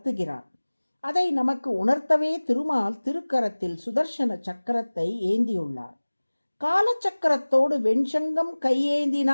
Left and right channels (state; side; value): inverted; both; correlation -1.00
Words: அதை நமக்கு உணர்த்தவே திருமால் திருக்கரத்தில் சுதர்சன சக்கரத்தை ஏந்தியுள்ளார். காலச்சக்கரத்தோடு வெண்சங்கம்